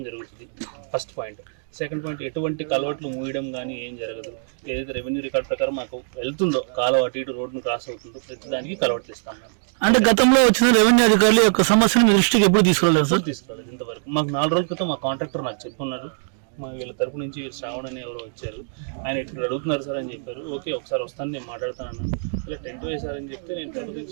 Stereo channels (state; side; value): silent; left; digital silence